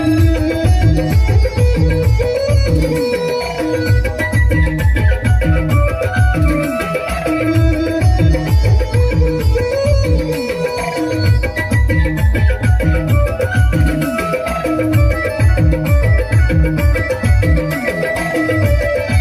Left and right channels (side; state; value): both; identical; correlation 1.00